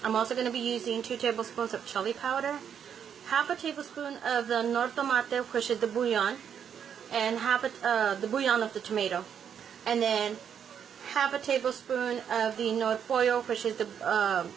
I'm also going to be using 2 tablespoons of chili powder, half a tablespoon of the Knorr Tomate, which is the bouillon, and the bouillon of the tomato, and then half a tablespoon of the Knorr Pollo, which is the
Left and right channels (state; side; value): quieter; left; 8.2 dB